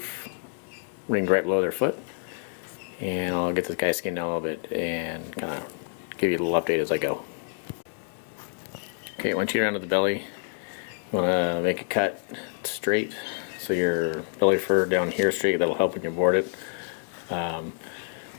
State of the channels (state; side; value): silent; right; digital silence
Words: ringed right below their foot. And I'll get this guy skinned down a little bit and kind of give you a little update as I go. Okay, once you get around to the belly, you want to make a cut straight, so your belly fur down here is straight. That'll help when you board it.